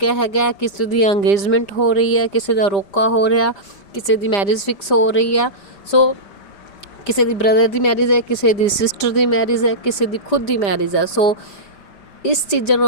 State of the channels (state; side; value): late; right; 5.0 ms